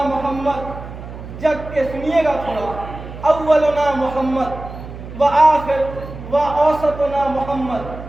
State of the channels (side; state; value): right; noise; hum, 12 dB below the sound